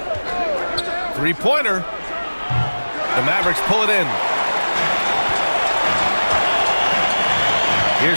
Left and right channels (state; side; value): inverted; both; correlation -1.00